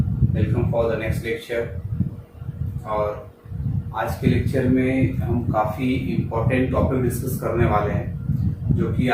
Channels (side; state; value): both; identical; correlation 1.00